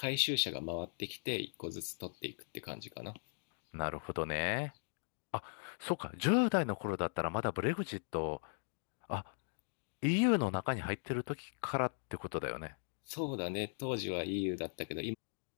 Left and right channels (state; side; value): silent; right; digital silence